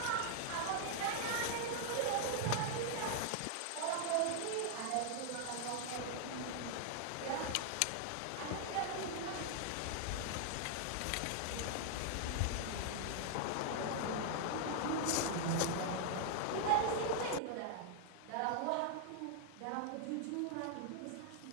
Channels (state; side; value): different; both; correlation 0.00